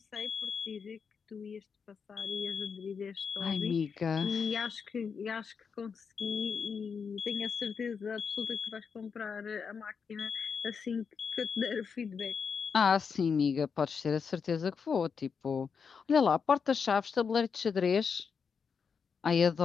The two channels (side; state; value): right; quieter; 6.0 dB